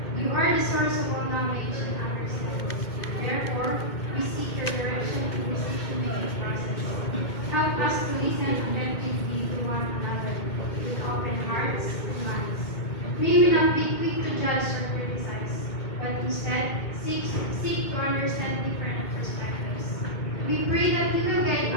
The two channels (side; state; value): right; late; 2.2 ms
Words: You are the source of all knowledge and understanding. Therefore, we seek your direction in this decision-making process. Help us to listen attentively to one another with open hearts and minds. May we not be quick to judge or criticize, but instead seek to understand different perspectives. We pray that you will guide